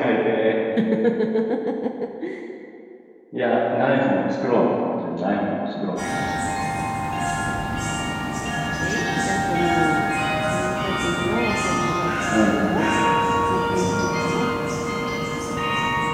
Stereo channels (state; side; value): identical; both; correlation 1.00